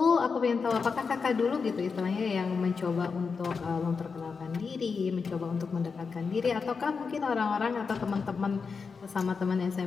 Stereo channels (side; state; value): right; quieter; 5.2 dB